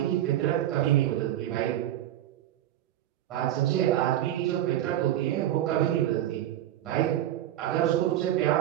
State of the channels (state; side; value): quieter; left; 12.7 dB